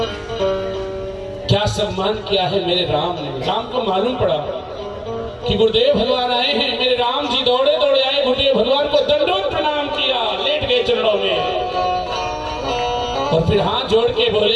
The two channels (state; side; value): identical; both; correlation 1.00